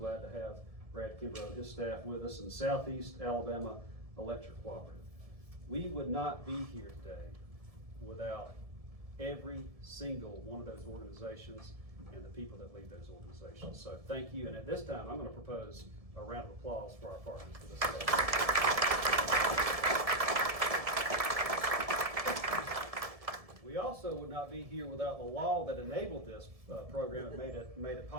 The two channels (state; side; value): late; left; 1.7 ms